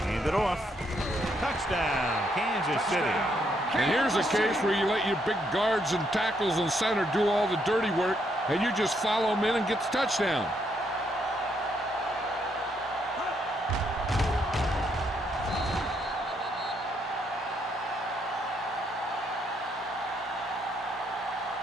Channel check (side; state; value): both; normal; correlation 0.74